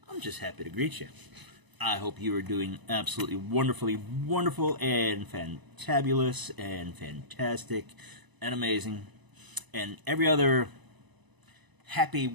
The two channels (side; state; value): left; late; 1.0 ms